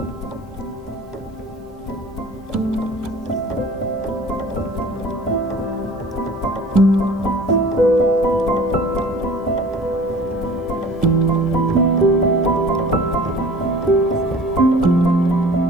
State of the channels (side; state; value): both; normal; correlation 0.45